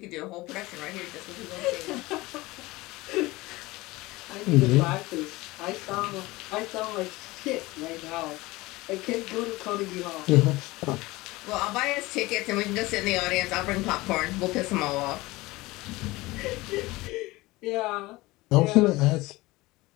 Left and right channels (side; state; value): right; quieter; 20.5 dB